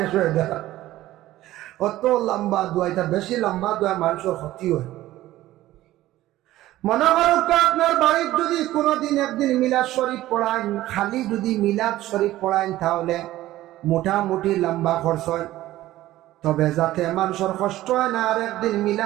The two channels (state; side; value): quieter; left; 15.4 dB